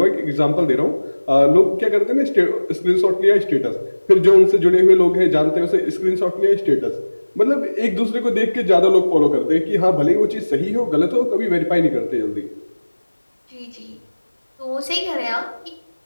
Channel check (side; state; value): both; inverted; correlation -1.00